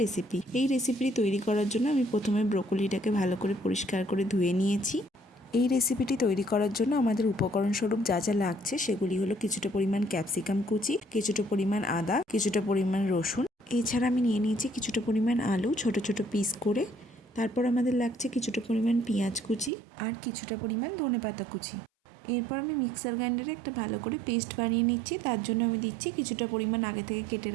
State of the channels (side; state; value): left; drops out; at 19.7 s